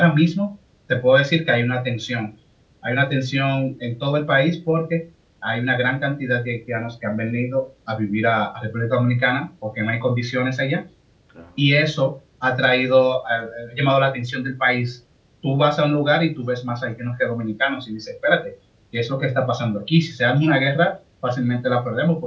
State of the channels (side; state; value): both; identical; correlation 1.00